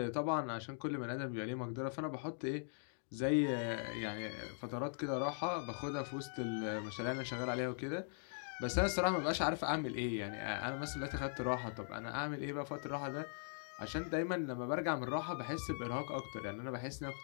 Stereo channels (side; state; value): right; silent; digital silence